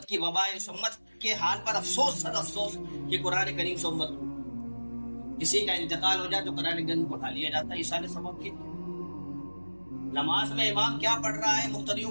کی وبا ہے. اس امت کے حال پر افسوس, صد افسوس کہ قرآن کریم سے امت کسی کا انتقال ہو جائے تو قرآن کریم کو اٹھا لیا جاتا ہے. یہ سارے سبب کے. نماز میں امام کیا پڑھ رہا ہے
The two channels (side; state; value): both; inverted; correlation -1.00